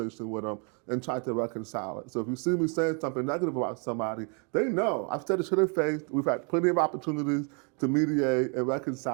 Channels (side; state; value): left; quieter; 36.8 dB